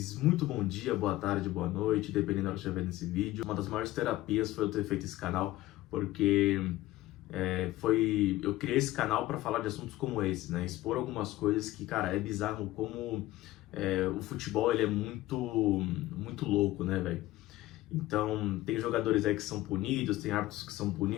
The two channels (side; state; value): right; quieter; 16.7 dB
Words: Muito bom dia, boa tarde, boa noite, dependendo da hora que estiver vendo esse vídeo. Uma das maiores terapias foi eu ter feito esse canal, porque eu criei esse canal para falar de assuntos como esse, né? Expor algumas coisas que, cara, é bizarro como o futebol ele é muito louco, né, velho? Então, tem jogadores aí que são punidos, tem árbitros que são